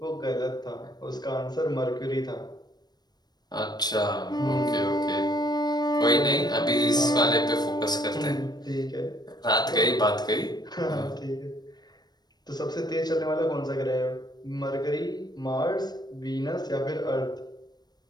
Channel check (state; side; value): late; right; 0.20 ms